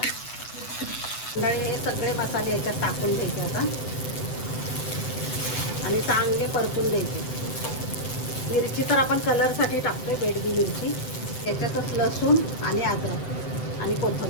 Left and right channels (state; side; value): late; right; 7.9 ms